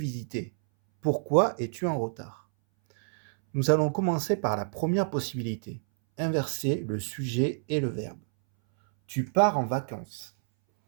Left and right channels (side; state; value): left; silent; 59 dB below the other